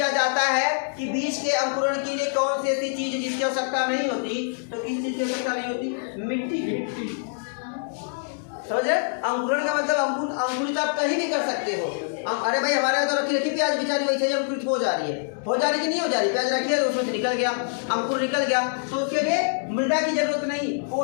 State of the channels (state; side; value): silent; right; digital silence